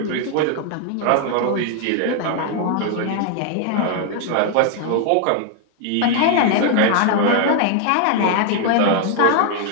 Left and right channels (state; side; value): different; both; correlation 0.00